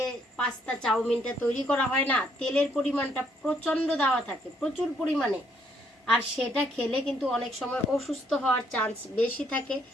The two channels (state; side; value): normal; both; correlation 0.70